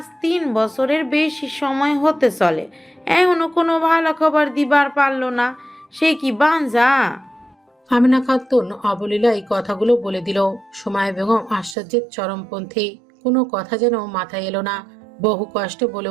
3 বছরের বেশি সময় হতে চলে, এখনো কোনো ভালো খবর দিবার পারলো না। সে কি বাঞ্জা? আমিনা খাতুন অবলীলায় কথাগুলো বলে দিল। সুমাইয়া বেগম আশ্চর্যের চরমপন্থী। কোনো কথা যেন মাথায় এলো না। বহু কষ্টে বলে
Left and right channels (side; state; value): left; drops out; at 11.8 s